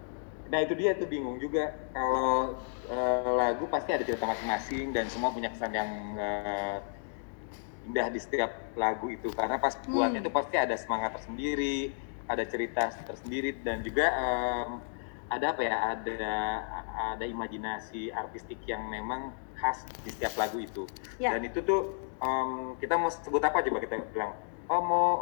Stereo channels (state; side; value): silent; right; digital silence